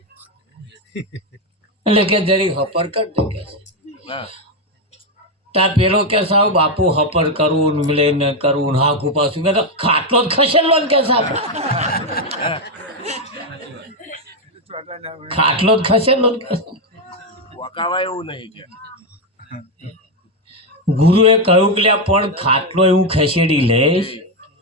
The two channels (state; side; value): normal; both; correlation 0.06